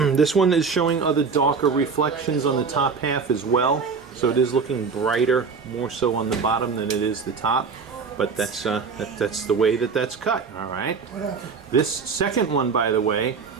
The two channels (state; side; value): quieter; left; 5.3 dB